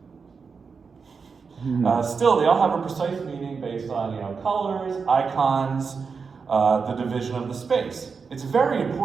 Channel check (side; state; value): left; quieter; 5.3 dB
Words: Still, they all have a precise meaning based on colors, icons, the division of the space. It's very